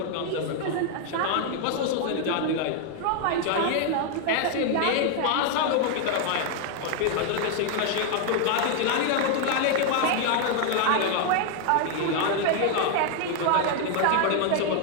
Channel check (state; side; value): different; both; correlation 0.00